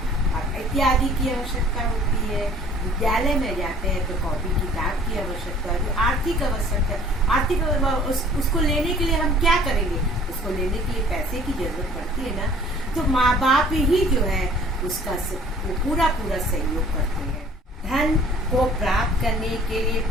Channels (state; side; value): normal; both; correlation 0.52